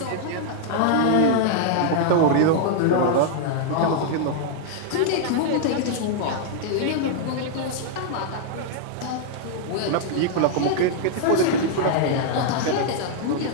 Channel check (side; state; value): both; different; correlation -0.01